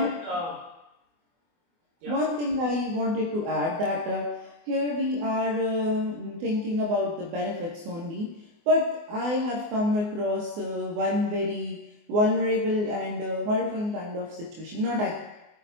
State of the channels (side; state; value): left; late; 24 ms